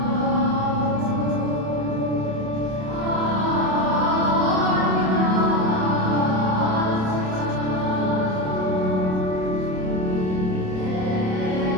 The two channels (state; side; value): late; left; 27 ms